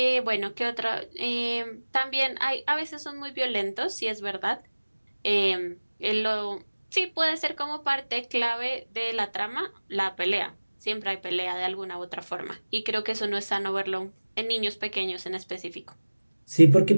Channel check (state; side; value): inverted; both; correlation -1.00